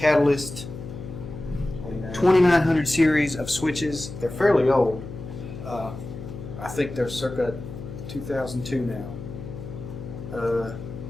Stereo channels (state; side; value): noise; left; hum, 10 dB below the sound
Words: 2900 series of switches. They're fairly old. I think they're circa 2002 now.